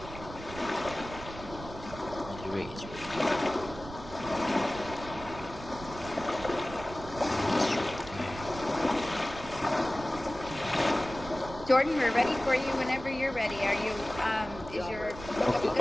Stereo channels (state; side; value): noise; right; rumble, 13 dB below the sound